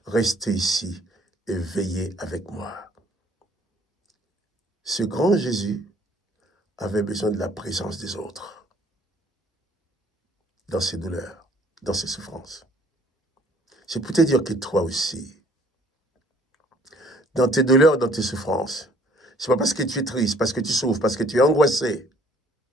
restez ici et veillez avec moi. Ce grand Jésus avait besoin de la présence des autres dans ses douleurs, dans ses souffrances. C'est pour te dire que toi aussi, dans tes douleurs, dans tes souffrances, c'est pas parce que tu es triste, parce que tu souffres, parce que tu es angoissé,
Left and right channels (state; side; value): normal; both; correlation 0.59